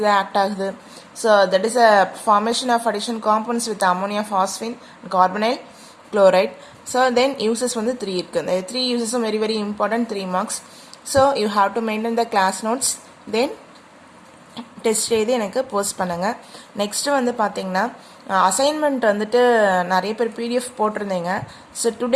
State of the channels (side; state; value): both; identical; correlation 1.00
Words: act agudhu. So that is a formation of addition compounds with ammonia phosphine, carbonyl, chloride. So then uses வந்து 3 இருக்கு. The 3 uses are very very important, 3 marks. So you have to maintain the class notes. Then test எழுதி எனக்கு போஸ்ட் பண்ணுங்கள். நெக்ஸ்ட்டு வந்து பார்த்தீங்கன்னா அசைன்மெண்ட் வந்துட்டு நிறைய பேர் பிடிஎஃப் போட்டிருந்தீங்க. ஸோ